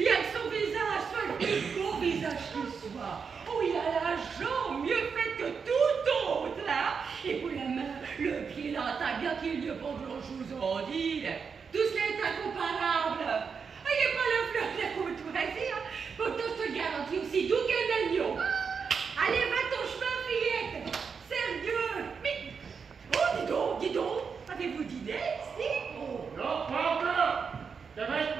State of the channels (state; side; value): quieter; left; 5.9 dB